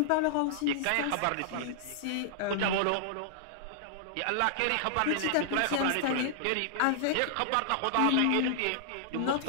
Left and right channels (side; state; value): both; different; correlation -0.01